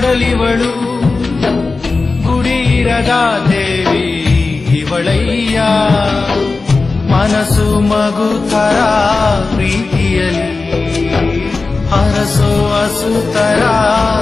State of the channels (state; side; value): quieter; right; 3.9 dB